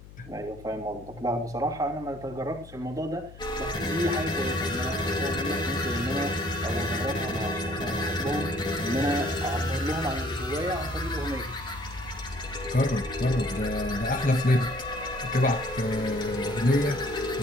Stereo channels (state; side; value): noise; left; hum, 18 dB below the sound